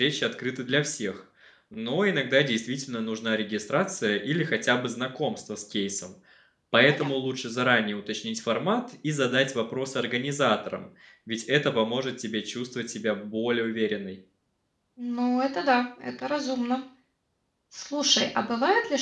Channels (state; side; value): identical; both; correlation 1.00